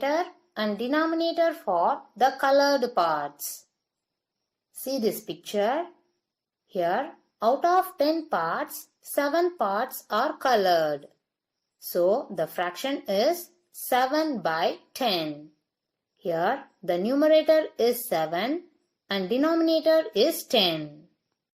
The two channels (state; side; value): identical; both; correlation 1.00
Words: and denominator for the colored parts. See this picture. Here, out of 10 parts, 7 parts are colored. So, the fraction is 7 by 10. Here, the numerator is 7 and denominator is 10.